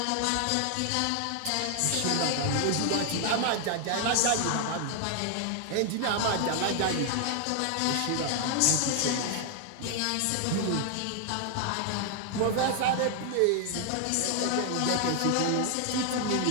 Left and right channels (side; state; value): both; different; correlation 0.00